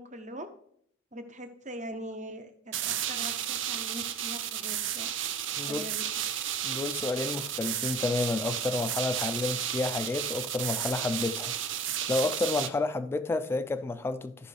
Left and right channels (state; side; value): normal; both; correlation 0.47